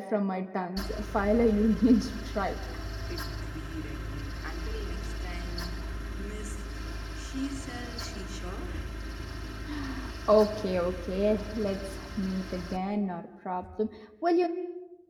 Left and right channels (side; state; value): both; identical; correlation 1.00